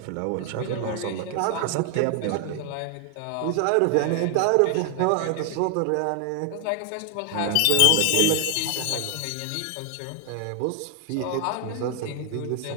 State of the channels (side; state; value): both; different; correlation 0.00